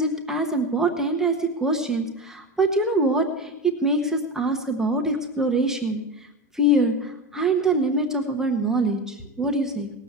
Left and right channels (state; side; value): normal; both; correlation 0.23